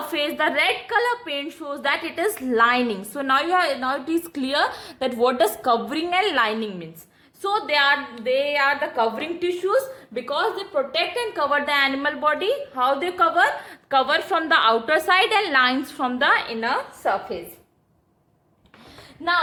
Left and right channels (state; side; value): identical; both; correlation 1.00